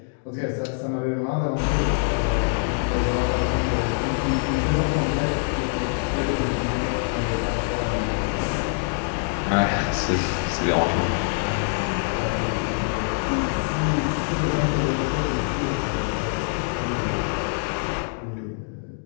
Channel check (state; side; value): silent; right; digital silence